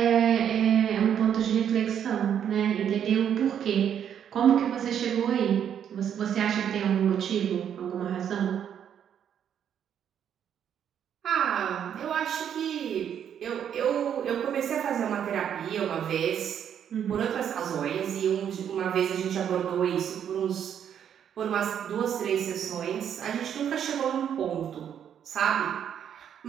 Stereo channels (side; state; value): left; quieter; 8.9 dB